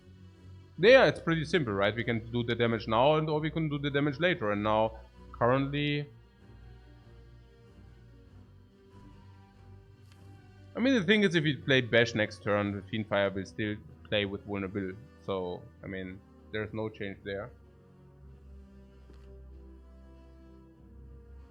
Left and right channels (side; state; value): both; identical; correlation 1.00